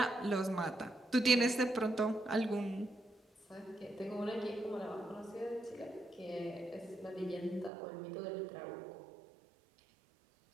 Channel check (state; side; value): drops out; left; at 7.7 s